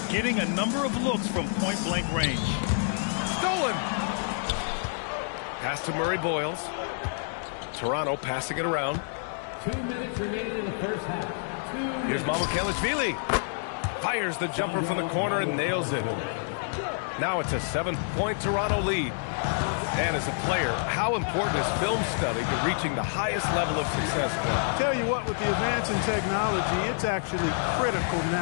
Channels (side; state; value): right; silent; digital silence